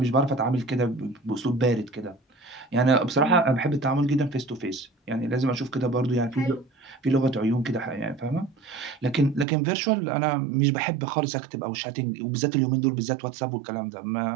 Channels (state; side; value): drops out; left; at 9.5 s